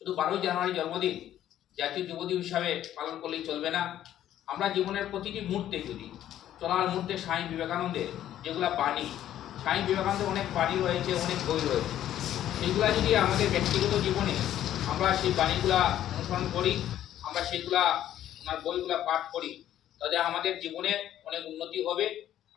12ই জানুয়ারি জন্মদিন জাতীয় যুব দিবস হিসাবে পালন করলেই চলবে না। আমরা জীবনের প্রতিটি মুহূর্তে, যদি চলার মুহূর্তে স্বামী বিবেকানন্দের যেগুলা বাণী, স্বামী বিবেকানন্দের অনেক বাণী রয়েছে, অনেক বই রয়েছে, সেইগুলা যদি আমাদের ব্যক্তিগত জীবনে আমরা সেই বাণীগুলা অনুসরণ করি, আমরা সেইগুলা ওনার বইগুলা পাঠ করি, তাহলে আমাদের জীবনে অনেক উন্নতি হবে,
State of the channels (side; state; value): right; quieter; 11.8 dB